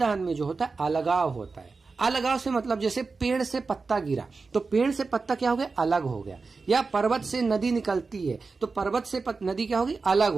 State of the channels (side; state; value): left; quieter; 4.3 dB